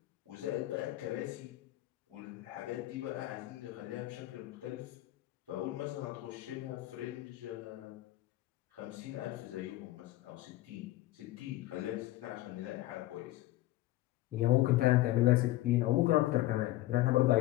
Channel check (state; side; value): quieter; right; 16.6 dB